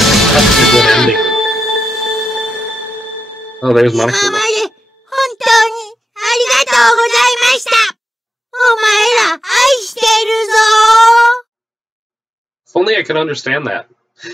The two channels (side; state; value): both; normal; correlation 0.89